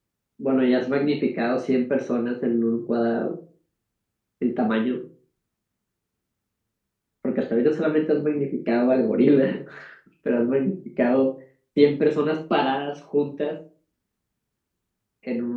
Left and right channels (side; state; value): both; identical; correlation 1.00